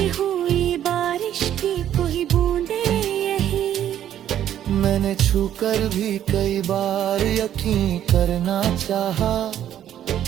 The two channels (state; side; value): quieter; left; 10.9 dB